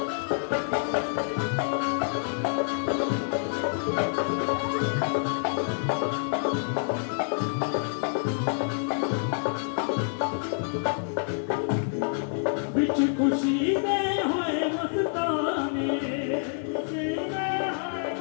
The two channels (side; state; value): right; silent; digital silence